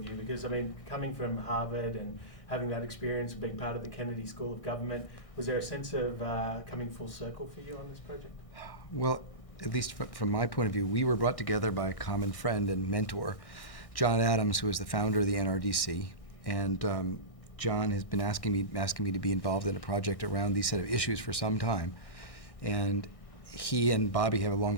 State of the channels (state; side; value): late; right; 1.6 ms